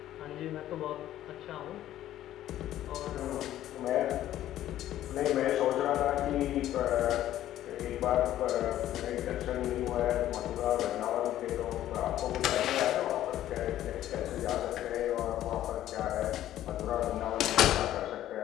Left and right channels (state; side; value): quieter; right; 12.9 dB